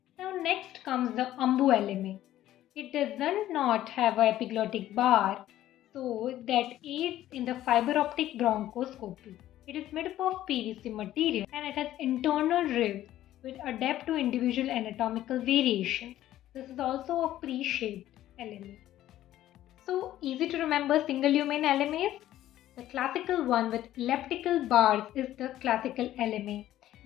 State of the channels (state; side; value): quieter; right; 13.4 dB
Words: Now next comes the umbu LMA. It does not have an epiglottic bar, so that aids in the fiber optic bronchoscopy. It is made up of PVC material and it has internal ribs which adapt to individual anatomical variations. This is also a pre-shaped LMA. So easy to remember single lumen LMAs. The classical one with elliptical bars is the classical LMA.